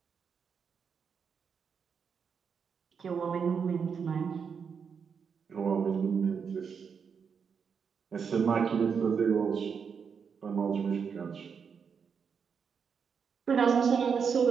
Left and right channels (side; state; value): left; quieter; 6.4 dB